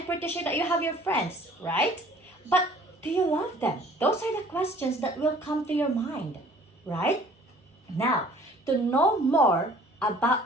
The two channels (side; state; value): both; normal; correlation 0.53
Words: pretty sure that you have your friends, right? But do you love them? Those are the questions that will come to your mind, right? Now, to know more